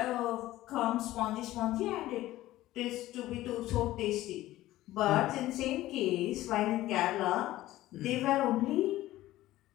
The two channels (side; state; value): right; quieter; 15.8 dB